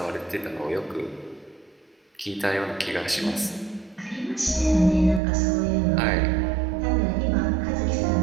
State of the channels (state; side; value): drops out; left; at 5.2 s